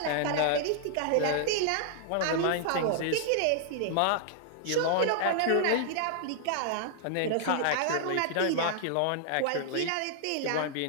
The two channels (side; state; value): both; different; correlation -0.01